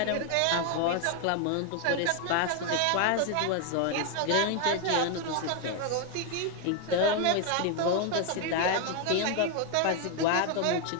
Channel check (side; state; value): both; different; correlation 0.01